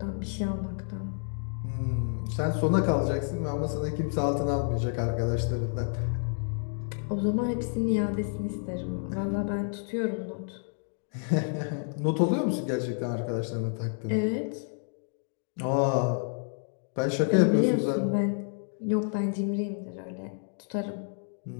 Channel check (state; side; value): silent; right; 58 dB below the other